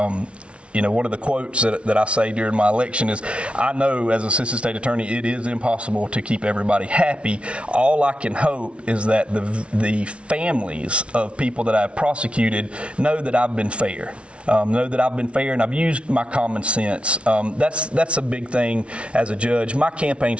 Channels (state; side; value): late; left; 0.060 ms